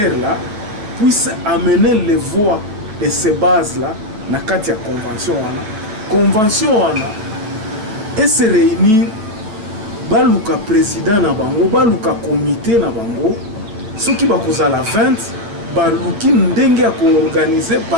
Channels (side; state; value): left; late; 9.2 ms